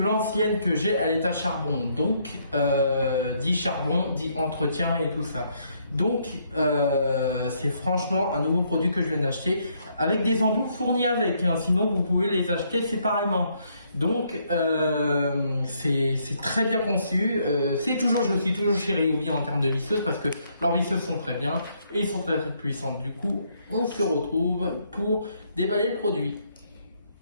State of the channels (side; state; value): both; inverted; correlation -0.71